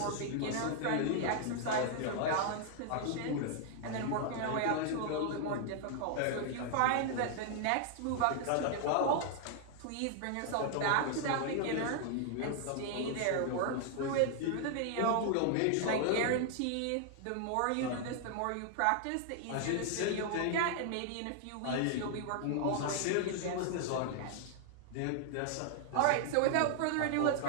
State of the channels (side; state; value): both; different; correlation 0.00